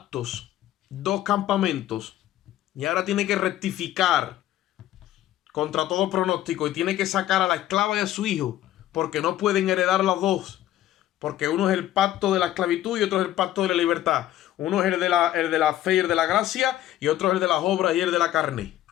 dos campamentos. Y ahora tiene que rectificar contra todo pronóstico y tiene que sacar a la esclava y a su hijo, porque no pueden heredar las dos. Porque uno es el pacto de la esclavitud y otro es el pacto de la libertad. Uno es el de la fe y el de la gracia, y otro es el de las obras y el de la carne.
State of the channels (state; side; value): quieter; right; 13.3 dB